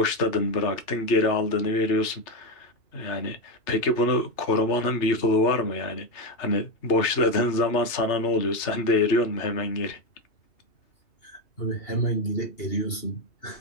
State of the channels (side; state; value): right; late; 3.3 ms